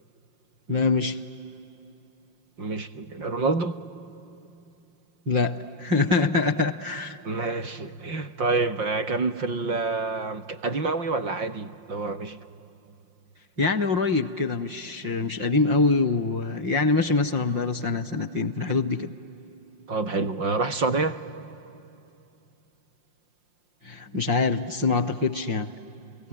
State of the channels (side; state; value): left; late; 5.7 ms